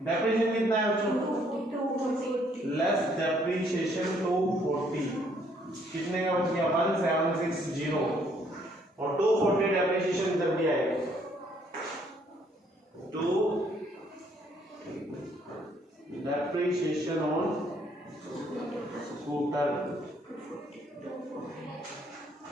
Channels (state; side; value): normal; both; correlation 0.66